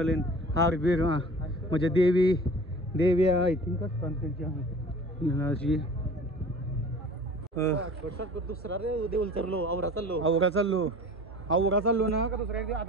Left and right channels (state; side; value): normal; both; correlation 0.43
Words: हार बीर. म्हणजे देवी आय थिंक असतात त्यांची. दुसरा रे देऊल चाललो आवरा चाललो ना का दुसऱ्या.